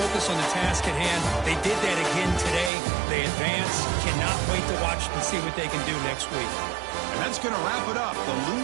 on the task at hand. They did that again today. They advance. Cannot wait to watch and see what they can do next week. And that's going to wrap it up. The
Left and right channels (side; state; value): left; drops out; at 2.7 s